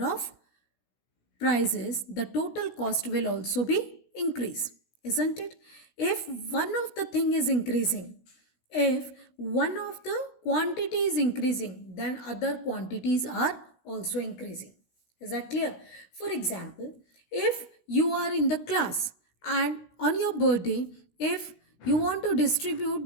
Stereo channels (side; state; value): right; late; 16 ms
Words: of prices, the total cost will also be increase, isn't it? If one of the thing is increasing, if one of the quantity is increasing, then other quantities are also increasing. Is that clear? For example, if you are in the class and on your birthday, if you want to